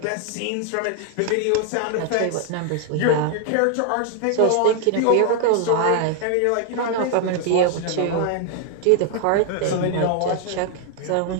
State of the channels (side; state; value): both; different; correlation 0.00